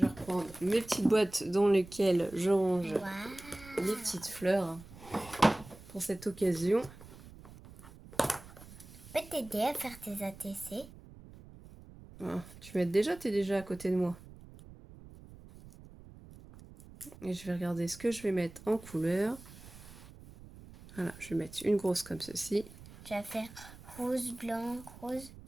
reprendre mes petites boîtes dans lesquelles je range les petites fleurs pour cette occasion. Je peux t'aider à faire tes ATC? Ah, tu m'aides déjà, t'es déjà à côté de moi. Et je vais regarder ce que je vais mettre en couleur. Voilà, je vais mettre une grosse comme ceci. Tu vas faire rose, blanc, rose.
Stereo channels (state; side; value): noise; right; rumble, 18 dB below the sound